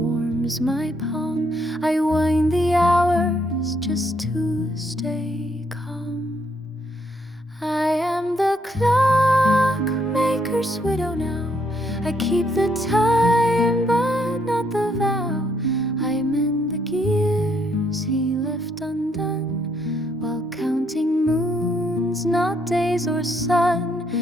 my palm. I wind the hours just to stay calm. I am the clockmaker's widow now. I keep the time but not the vow. I mend the gears he left undone, while counting moons, not days or sun.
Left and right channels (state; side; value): normal; both; correlation 0.72